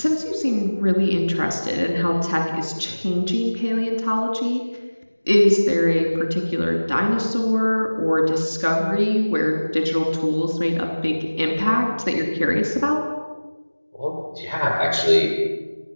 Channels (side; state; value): both; inverted; correlation -1.00